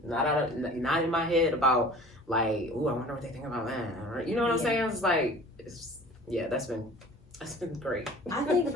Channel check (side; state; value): both; normal; correlation 0.44